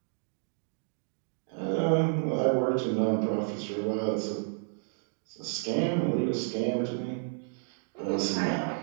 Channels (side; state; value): left; silent; digital silence